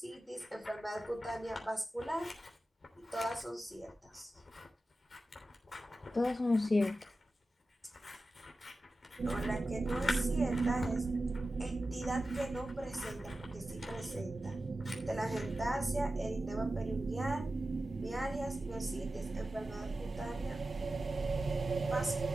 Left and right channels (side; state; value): both; normal; correlation 0.93